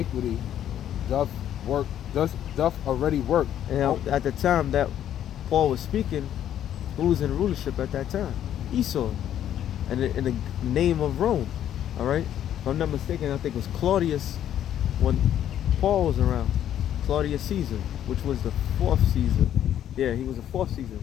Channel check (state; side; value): quieter; right; 10.7 dB